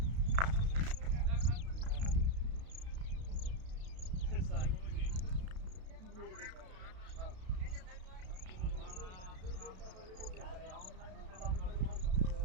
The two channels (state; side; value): late; left; 32 ms